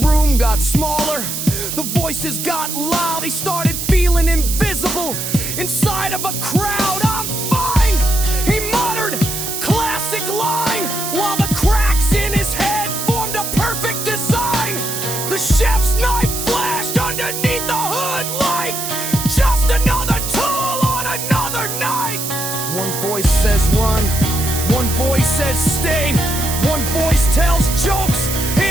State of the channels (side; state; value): right; noise; hiss, 4 dB below the sound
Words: got smaller, the voices got loud. He started feeling invisible inside of a crowd. I'm fine, he muttered, classic line, while the cracks in his head formed a perfect design. The chef's knife flashed underneath the hood light. Just another tool on another night. One voice says run, one voice says stay, one voice tells jokes